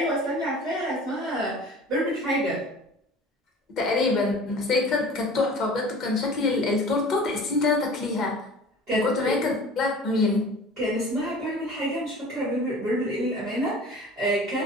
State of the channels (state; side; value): normal; both; correlation 0.42